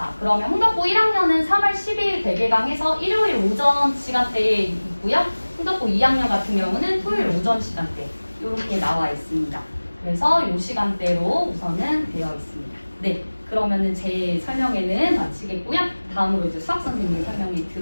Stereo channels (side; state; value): both; inverted; correlation -1.00